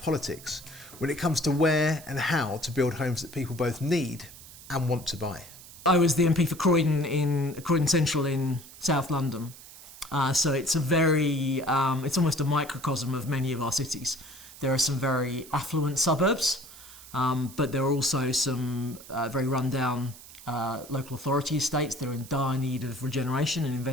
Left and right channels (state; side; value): noise; right; hiss, 18 dB below the sound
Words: when it comes to where and how to build homes that people both need and want to buy. I was the MP for Croydon Central in South London. So it's it's almost a microcosm of many of our cities. There are some very affluent suburbs, but there are also some very run-down local authority estates. They're in dire need of regeneration and